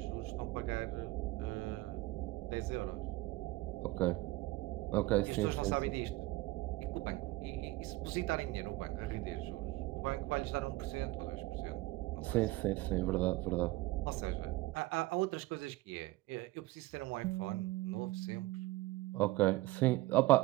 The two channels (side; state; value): left; quieter; 19.1 dB